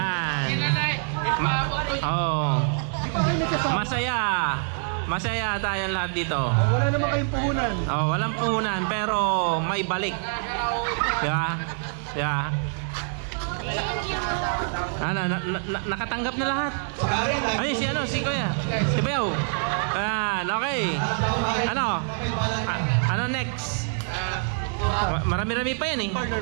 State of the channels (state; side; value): silent; left; 58 dB below the other